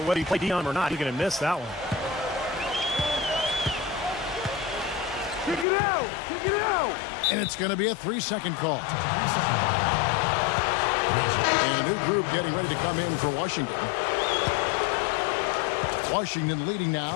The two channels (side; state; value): right; drops out; at 5.7 s